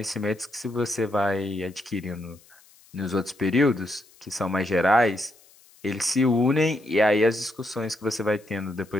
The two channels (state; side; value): noise; left; hiss, 28 dB below the sound